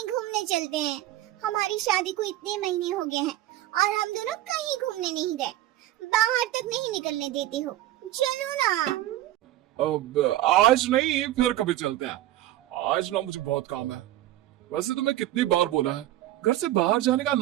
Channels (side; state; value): left; quieter; 14.4 dB